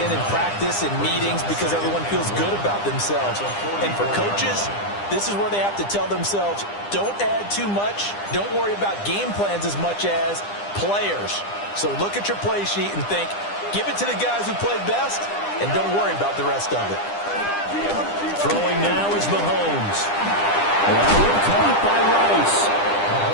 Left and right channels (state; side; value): late; right; 9.9 ms